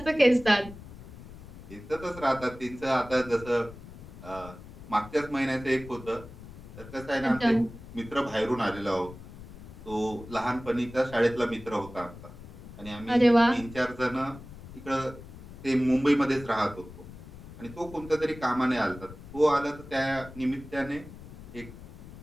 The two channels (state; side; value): noise; left; rumble, 15 dB below the sound